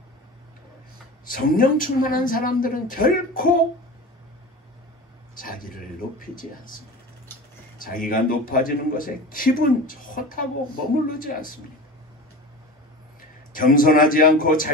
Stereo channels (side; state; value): both; normal; correlation 0.32